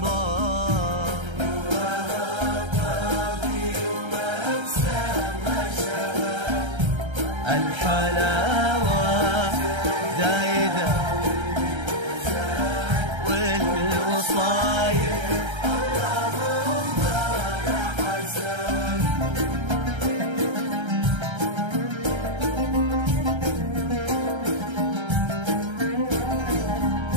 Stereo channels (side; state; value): left; late; 1.3 ms